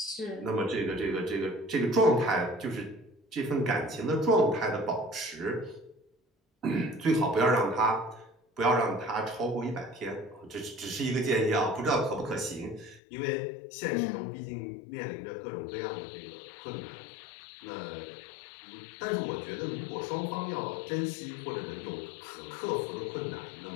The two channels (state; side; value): drops out; right; at 13.0 s